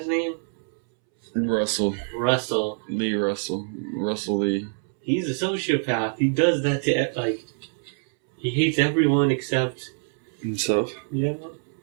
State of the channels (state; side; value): silent; left; 62 dB below the other